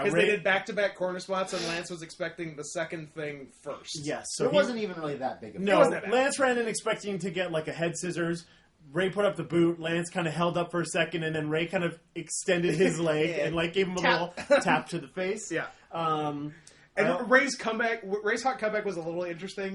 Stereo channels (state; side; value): identical; both; correlation 1.00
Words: Because Ray. they did back-to-back corner spots, and Lance was expecting the second thing first. Yes, so it he- wasn't even really that big of a No, wasn't that bad. Lance ran in expecting to get like a head scissors. Ray put up the boot. Lance kind of held up for a second, and then Ray kind of extended his leg Yeah. and like gave him a Tap. little tap to the face. Yeah. Um, And I- Ray's hot comeback was a little